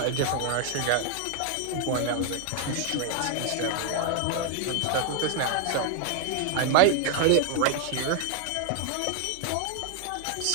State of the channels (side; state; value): both; different; correlation 0.00